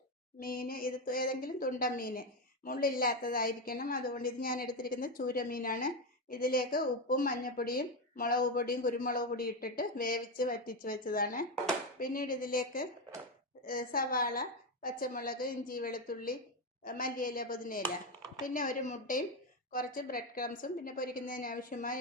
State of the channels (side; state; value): both; normal; correlation 0.10